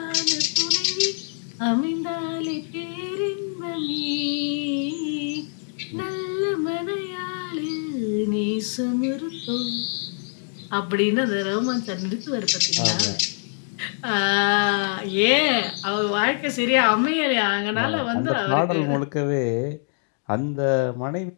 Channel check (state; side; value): silent; right; 56 dB below the other